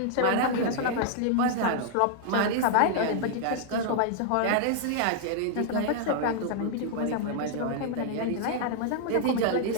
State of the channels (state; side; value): different; both; correlation -0.01